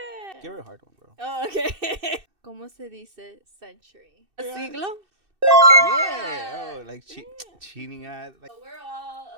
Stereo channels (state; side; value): late; left; 2.6 ms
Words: Give her a hard one, bro. Oh, okay. ¿Cómo se dice century? Siglo. Yeah. Oh, like cheating at. Like. So we're all